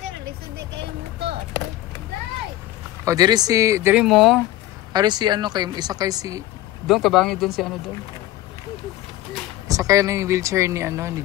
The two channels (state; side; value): quieter; right; 15.3 dB